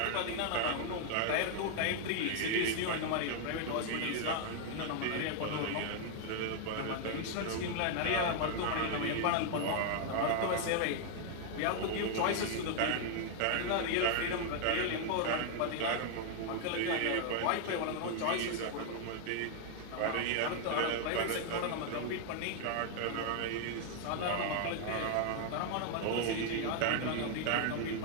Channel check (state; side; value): different; both; correlation 0.00